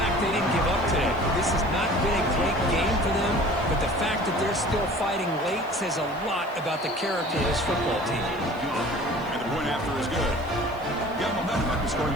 they didn't give up today. This has not been a great game for them, but the fact that they're still fighting late says a lot about the character of this football team. And the point after is good. Got momentum after scoring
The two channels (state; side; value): noise; right; hiss, 26 dB below the sound